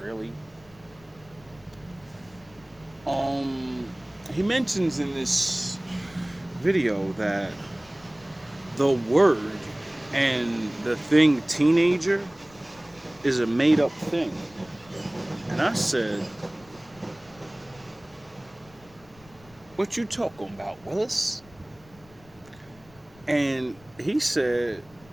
really. He mentions in this video that the word and the thing teenager is a made-up thing. And I said, what you talking about, Willis? And he said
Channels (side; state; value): left; noise; rumble, 26 dB below the sound